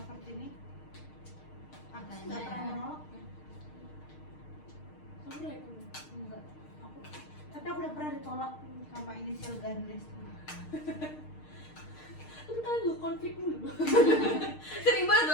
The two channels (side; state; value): right; late; 6.5 ms